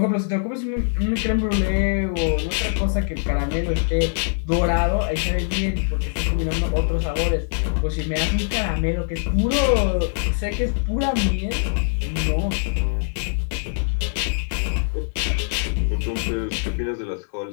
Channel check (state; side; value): silent; right; digital silence